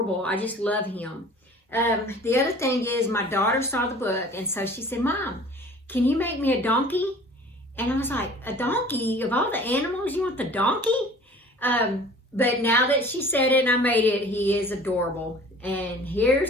I just love him. The other thing is, my daughter saw the book, and so she said, Mom, can you make me a donkey? And I was like, a donkey? Of all the animals, you want the donkey? But now that she said it and I made it, he is adorable. And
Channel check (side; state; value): both; normal; correlation 0.46